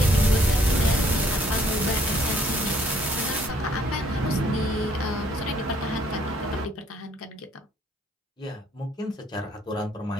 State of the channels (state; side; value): normal; both; correlation 0.64